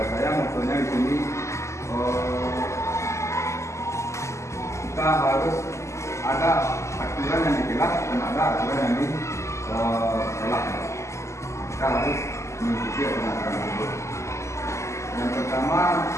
saya maksudnya di sini kita harus ada aturan yang dikelas dan ada aturan yang ditolak. Kita harus mengikuti aturan tersebut. Yang pertama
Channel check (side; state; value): right; late; 0.14 ms